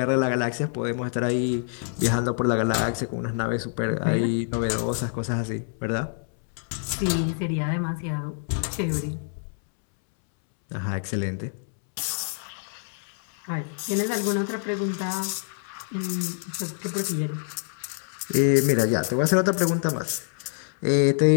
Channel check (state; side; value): silent; right; 61 dB below the other